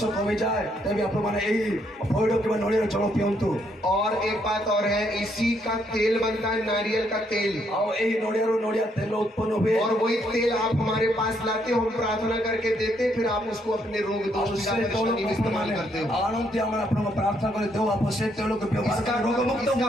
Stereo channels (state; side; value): normal; both; correlation 0.73